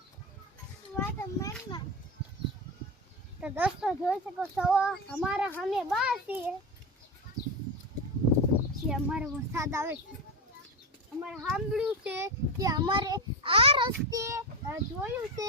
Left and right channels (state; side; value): normal; both; correlation 0.16